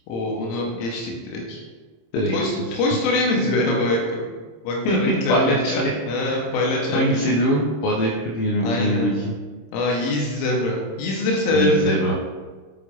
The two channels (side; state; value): right; late; 26 ms